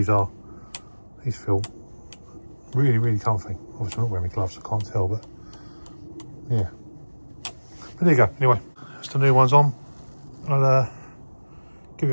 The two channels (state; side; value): inverted; both; correlation -1.00